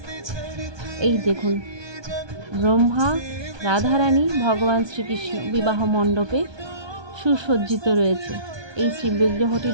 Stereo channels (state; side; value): late; left; 1.2 ms